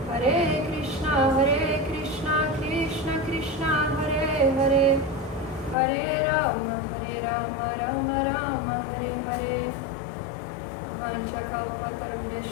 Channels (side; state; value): right; drops out; at 5.8 s